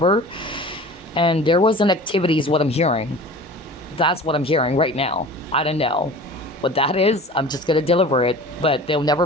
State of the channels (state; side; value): normal; both; correlation 0.40